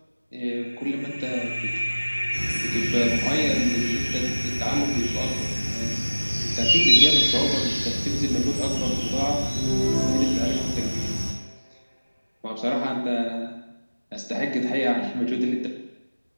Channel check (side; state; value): both; inverted; correlation -1.00